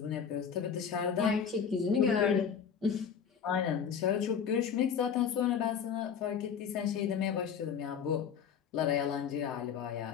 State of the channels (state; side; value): quieter; right; 7.3 dB